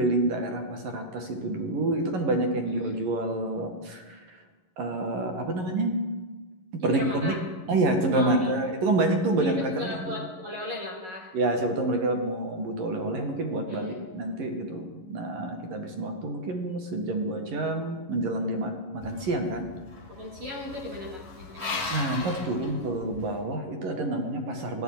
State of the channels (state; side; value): late; left; 11 ms